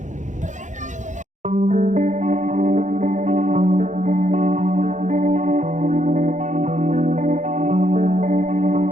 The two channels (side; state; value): left; late; 0.35 ms